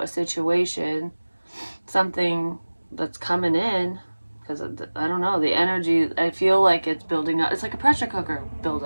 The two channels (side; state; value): both; inverted; correlation -1.00